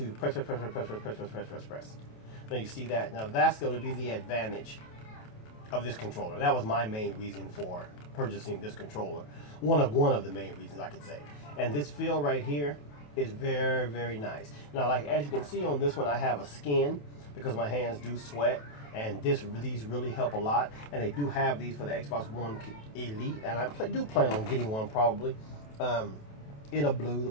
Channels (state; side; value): late; right; 28 ms